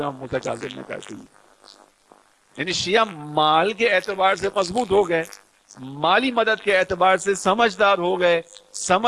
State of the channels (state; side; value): identical; both; correlation 1.00